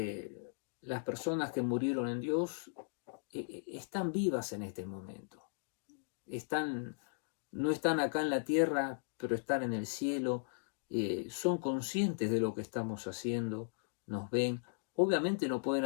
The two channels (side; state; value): right; silent; digital silence